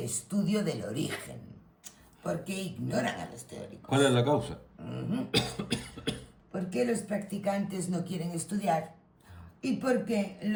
estudio del origen. ¿Por qué ignoran a los teóricos? ¿Cuál es la causa? ¿Por qué los practicantes no quieren estudiar? ¿Y por qué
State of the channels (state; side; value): identical; both; correlation 1.00